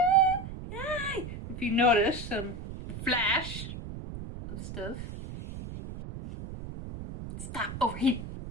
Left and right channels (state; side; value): noise; right; rumble, 9 dB below the sound